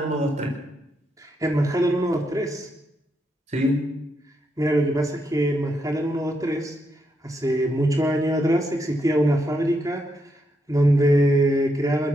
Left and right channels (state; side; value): normal; both; correlation 0.81